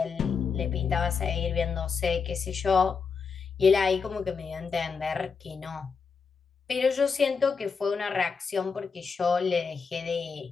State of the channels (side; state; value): right; quieter; 5.5 dB